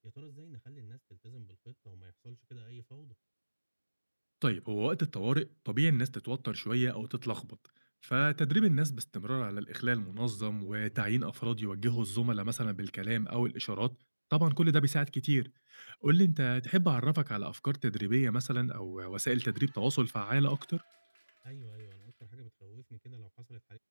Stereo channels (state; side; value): inverted; both; correlation -1.00